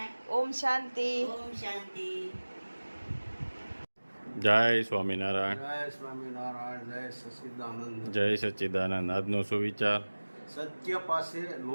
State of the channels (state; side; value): inverted; both; correlation -1.00